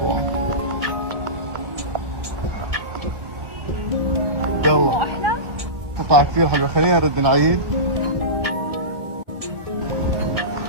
يلا قطعة كثير حلوة، خلينا نرد نعيد.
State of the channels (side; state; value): left; late; 1.6 ms